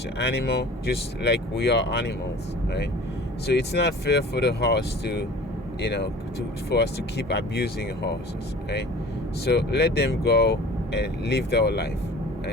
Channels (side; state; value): both; normal; correlation 0.44